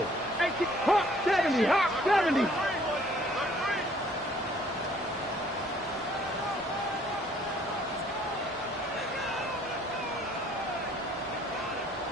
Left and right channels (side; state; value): both; normal; correlation 0.60